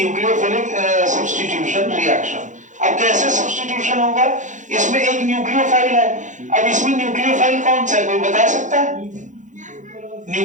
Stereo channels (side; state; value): left; late; 0.36 ms